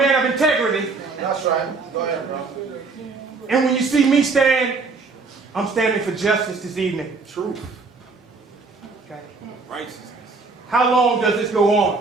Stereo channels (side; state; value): left; quieter; 4.1 dB